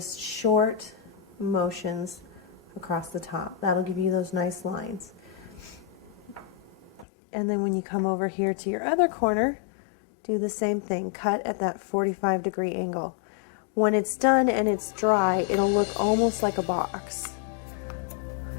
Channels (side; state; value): right; drops out; at 7.1 s